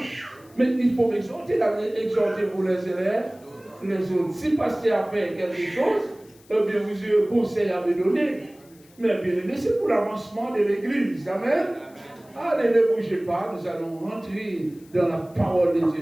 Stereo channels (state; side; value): noise; left; hiss, 28 dB below the sound